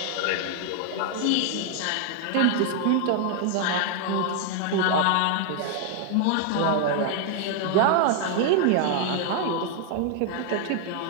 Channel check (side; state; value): both; different; correlation 0.00